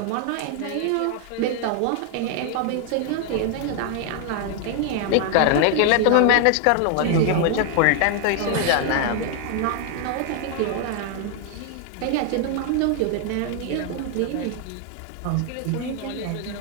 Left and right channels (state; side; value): different; both; correlation 0.00